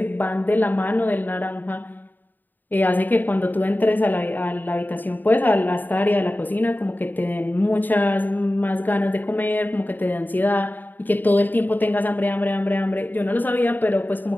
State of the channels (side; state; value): right; late; 0.088 ms